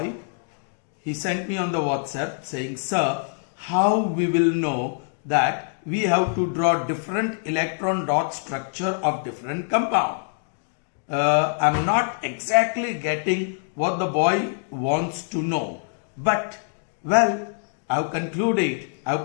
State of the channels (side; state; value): right; silent; digital silence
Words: He sent me on the WhatsApp saying, sir, how we will know that we have to draw different electron dot structure of different compound. I'm not exactly getting what the boy wants to know, but well, I've concluded, I've